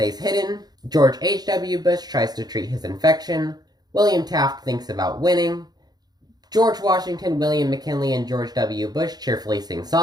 hidden. George H.W. Bush tries to treat his infection. William Taft thinks about winning. George Washington, William McKinley, and George W. Bush cheerfully sing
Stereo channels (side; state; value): left; late; 0.19 ms